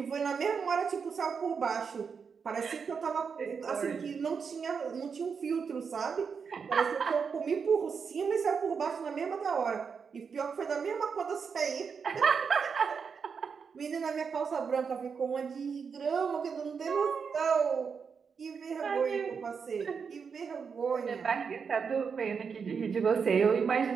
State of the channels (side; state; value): left; quieter; 6.0 dB